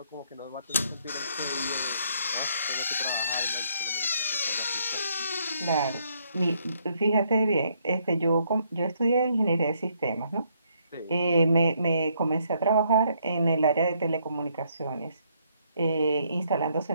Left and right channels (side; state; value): both; inverted; correlation -0.71